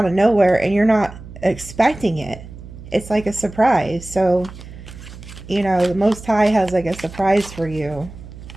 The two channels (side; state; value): right; noise; hum, 15 dB below the sound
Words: of nowhere and you're not expecting it. It's like a surprise. So, you know, the Most High has like a surprise for you.